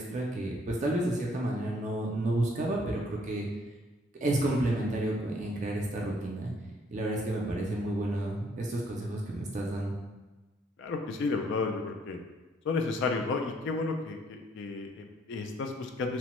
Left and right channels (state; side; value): normal; both; correlation 0.66